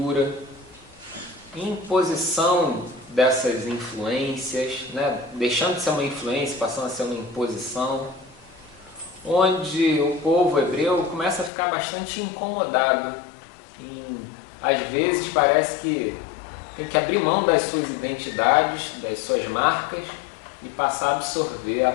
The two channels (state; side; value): drops out; right; at 11.5 s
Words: imposição dessas influências, né? Deixando de ser uma influência, passando a ser uma imposição, onde o povo hebreu começa a ficar bastante incomodado. Às vezes parece que tem que abrir mão das suas identidades, das suas marcas e passar a absorver